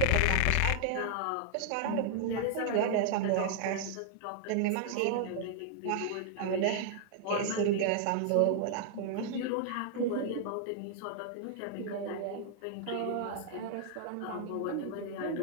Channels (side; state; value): both; different; correlation 0.00